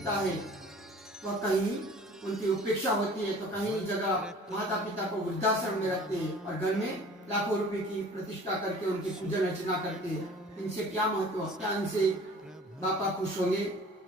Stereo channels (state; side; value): normal; both; correlation 0.47